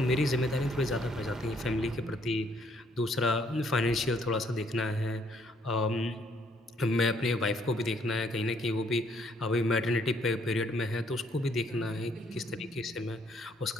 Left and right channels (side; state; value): both; normal; correlation 0.67